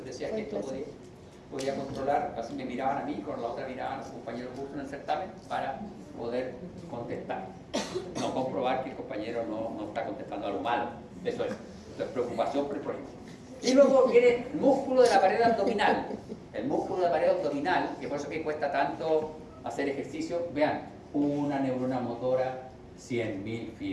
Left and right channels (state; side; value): identical; both; correlation 1.00